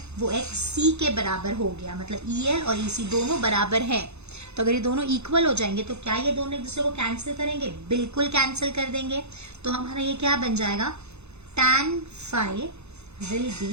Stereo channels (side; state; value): left; late; 0.81 ms